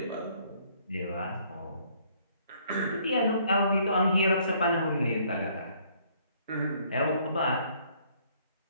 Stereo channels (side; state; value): both; inverted; correlation -0.63